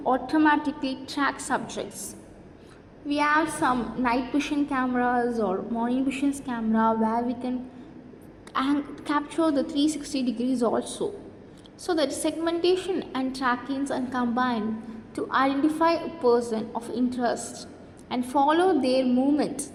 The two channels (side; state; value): both; identical; correlation 1.00